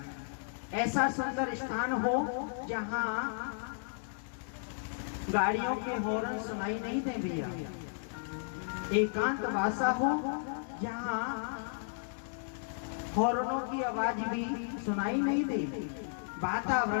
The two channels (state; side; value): silent; right; digital silence